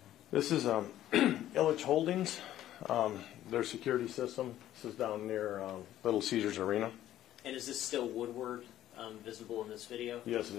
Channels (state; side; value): quieter; right; 12.8 dB